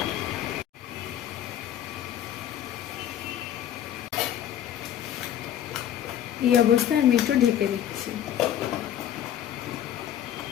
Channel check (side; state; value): right; quieter; 10.7 dB